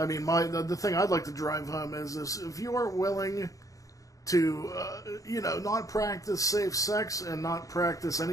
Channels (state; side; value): late; right; 0.16 ms